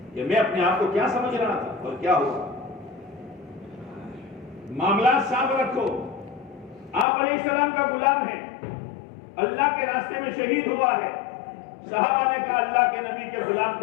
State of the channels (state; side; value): drops out; right; at 7.1 s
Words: کہ میں اپنے آپ کو کیا سمجھ رہا تھا اور کیا ہوا. معاملات صاف رکھو. آپ علیہ السلام کا غلام ہے, اللہ کے راستے میں شہید ہوا ہے. صحابہ نے کہا اللہ کے نبی کے غلام